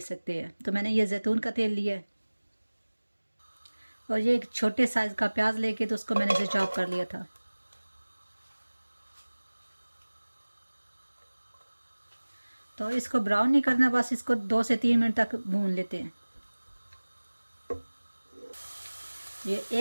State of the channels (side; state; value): both; inverted; correlation -1.00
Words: सकते हैं। तो मैंने ये जैतून का तेल लिया है और ये एक छोटे साइज़ का प्याज लेके तो उसको मैंने इसे चॉप कर लिया था। तो इसको ब्राउन नहीं करना, बस इसको 2 से 3 मिनट तक भून लेते हैं। ये